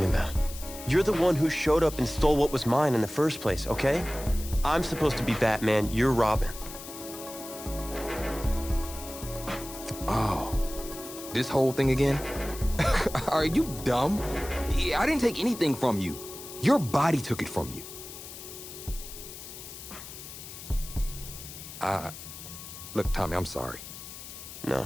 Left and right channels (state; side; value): noise; left; hiss, 13 dB below the sound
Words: about? You're the one who showed up and stole what was mine in the first place, okay? I'm supposed to be Batman, you're Robin. Oh, this whole thing again? Are you dumb? I didn't take anything from you. Your body took it from you. Look, Tommy, I'm sorry. No.